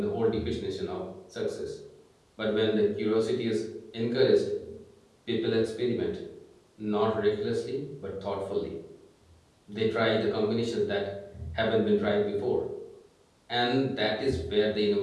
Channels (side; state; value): both; identical; correlation 1.00